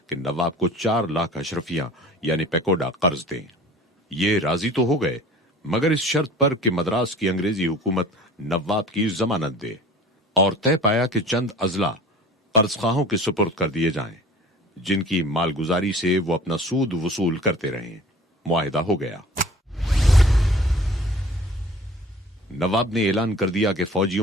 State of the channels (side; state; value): both; normal; correlation 0.45